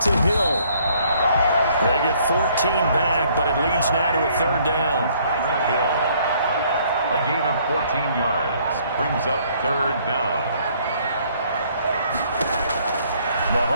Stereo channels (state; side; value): inverted; both; correlation -0.63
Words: to Hill. They get 14 back, but it leads now to a 3rd down. Hill. A gain of 14 yards brings up 3rd down.